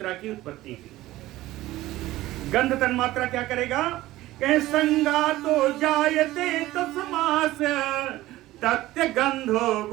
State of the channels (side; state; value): left; quieter; 16.6 dB